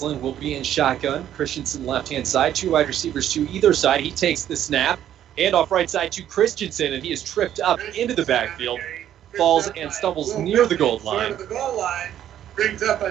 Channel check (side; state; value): left; quieter; 11.0 dB